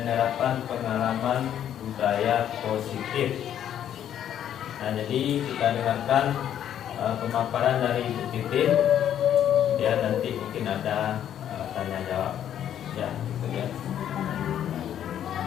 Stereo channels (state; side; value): quieter; right; 10.2 dB